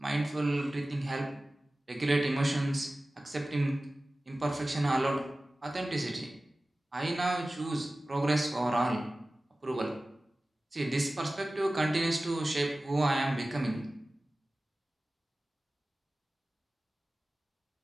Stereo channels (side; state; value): both; normal; correlation 0.97